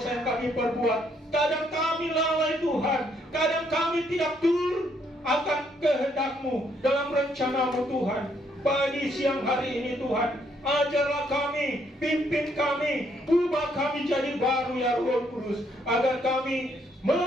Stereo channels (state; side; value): normal; both; correlation 0.71